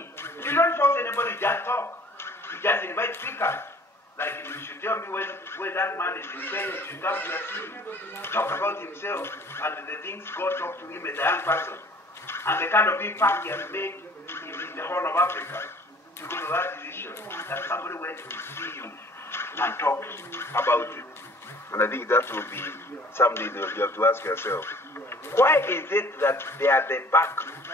You don't force anybody, just talk. You just invite speakers. Like you should tell me when that man is in Kenya, you should come to see him. Talk about himself and the things God talked to him as a young person. And the kind of impact he has made in the whole of Africa. To go to that decision that somebody went to see you and talk about it. And I think that will be something that you have to ask yourself. Why is it that they are the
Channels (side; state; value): both; normal; correlation 0.51